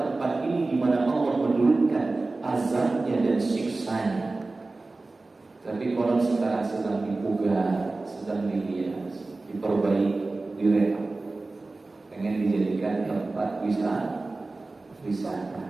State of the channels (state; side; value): quieter; left; 3.3 dB